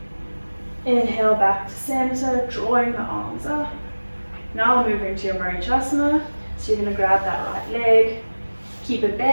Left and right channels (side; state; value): both; inverted; correlation -1.00